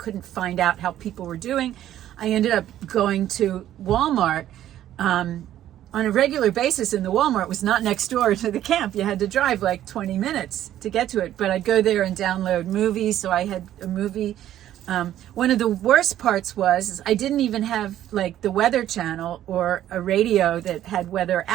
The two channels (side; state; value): left; quieter; 12.2 dB